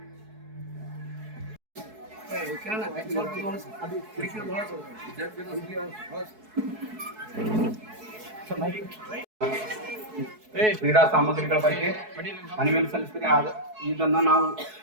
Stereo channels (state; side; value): late; left; 4.7 ms